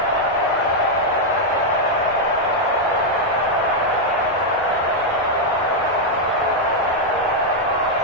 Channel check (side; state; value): both; normal; correlation -0.02